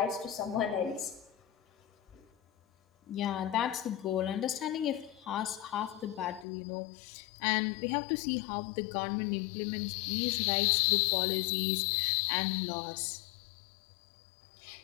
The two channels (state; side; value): drops out; right; at 6.5 s